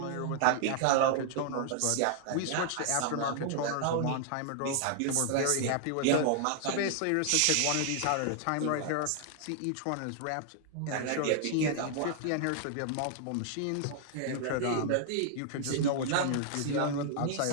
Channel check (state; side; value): different; both; correlation 0.00